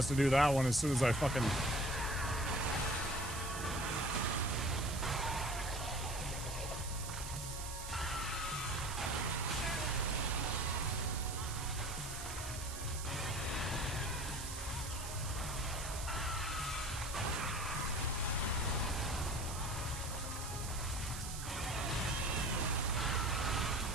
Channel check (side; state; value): right; noise; hiss, 8 dB below the sound